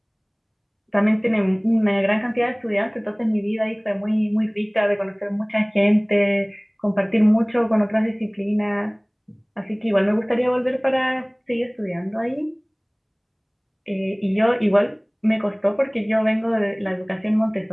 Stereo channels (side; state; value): both; identical; correlation 1.00